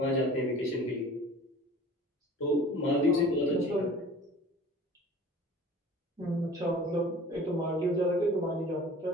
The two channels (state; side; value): normal; both; correlation 0.44